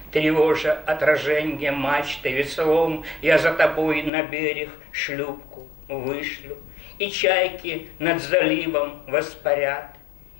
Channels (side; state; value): right; drops out; at 4.1 s